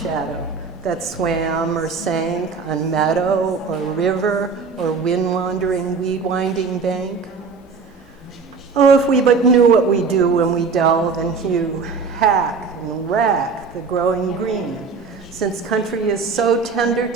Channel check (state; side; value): quieter; left; 5.0 dB